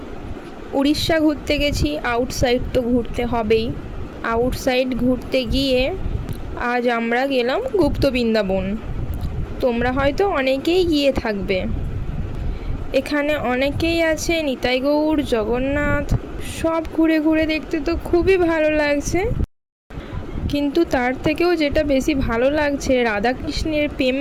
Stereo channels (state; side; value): identical; both; correlation 1.00